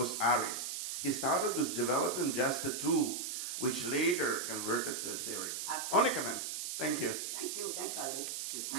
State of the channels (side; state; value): right; noise; hiss, 4 dB below the sound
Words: ARIZ. He started with developing just a tool, which later converted to a theory. Absolutely. Only comment. Thank you. Thank you. Thanks, Valerie. Okay,